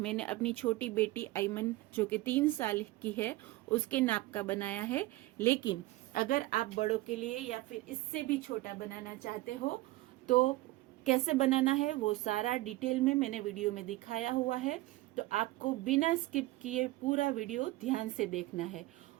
अपनी छोटी बेटी आइमन, जो कि 3 साल की है, उसके नाप का बनाया है। लेकिन अगर आप बड़ों के लिए या फिर इससे भी छोटा बनाना चाहते हो तो कैसे बनाना है वो सारा डिटेल में मैंने वीडियो में दिखाया हुआ है। तो आपको बिना स्किप किए पूरा वीडियो ध्यान से देखना है।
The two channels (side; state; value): left; quieter; 18.6 dB